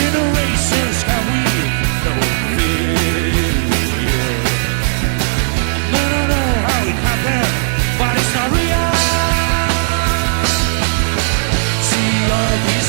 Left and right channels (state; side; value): silent; left; 59 dB below the other